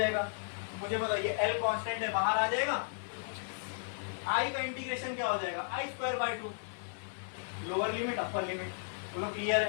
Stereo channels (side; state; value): right; silent; digital silence